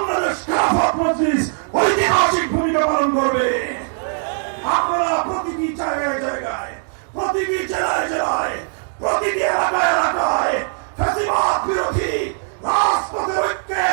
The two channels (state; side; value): silent; left; 62 dB below the other